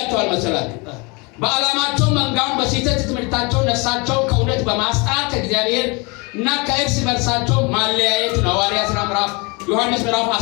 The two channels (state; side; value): quieter; right; 28.9 dB